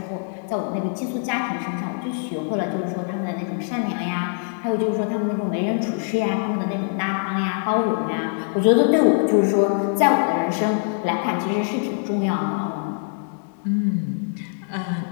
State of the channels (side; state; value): right; silent; 63 dB below the other